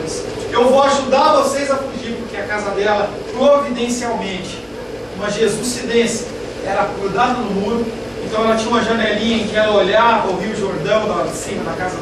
Eu vou ajudar vocês a fugir, porque a casa dela, providencialmente, uma jesucidência, era grudada no muro. Então ela tinha uma janelinha em que ela olhava o Rio Jordão lá de cima da casa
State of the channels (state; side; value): identical; both; correlation 1.00